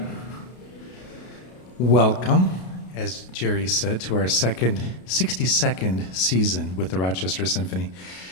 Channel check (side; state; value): right; late; 33 ms